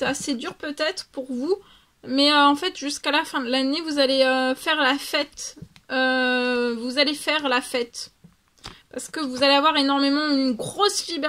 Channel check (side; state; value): both; identical; correlation 1.00